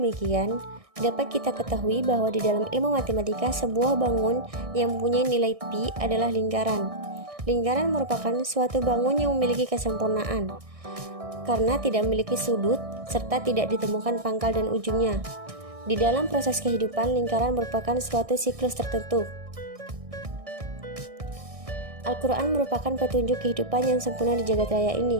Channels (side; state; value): left; late; 1.6 ms